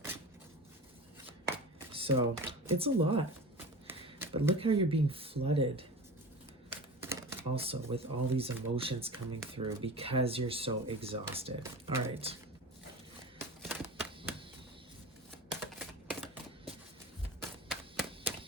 So it's a lot. But look how you're being flooded also with all these emotions coming through because you're so exhausted. All right.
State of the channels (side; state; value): both; normal; correlation 0.34